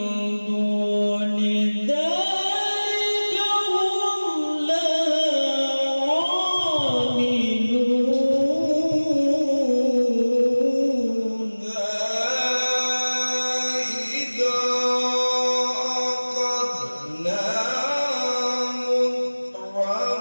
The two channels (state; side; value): inverted; both; correlation -1.00